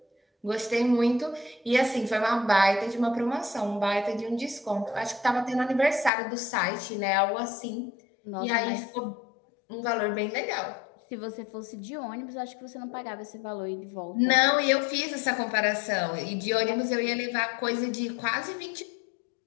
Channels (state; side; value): drops out; right; at 6.1 s